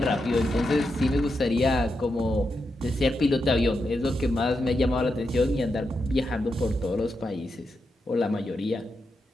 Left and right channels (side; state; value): both; normal; correlation 0.85